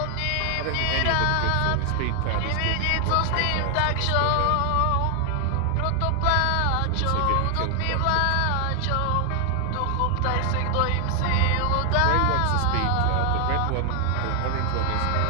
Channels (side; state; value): both; different; correlation 0.00